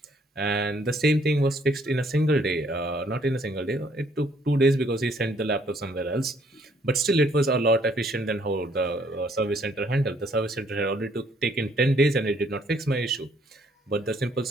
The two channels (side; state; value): both; normal; correlation 0.65